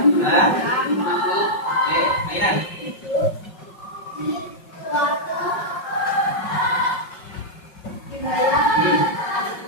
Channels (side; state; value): right; late; 5.4 ms